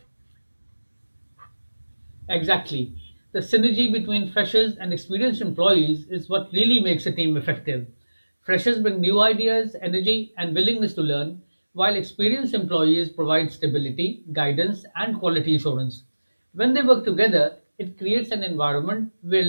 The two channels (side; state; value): both; inverted; correlation -1.00